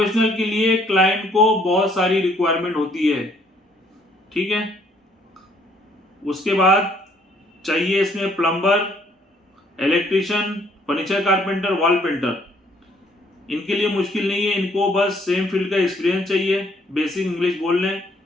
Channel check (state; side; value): normal; both; correlation 0.65